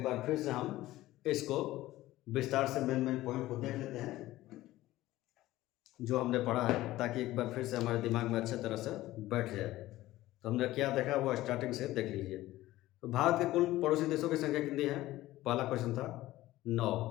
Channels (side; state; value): right; quieter; 16.3 dB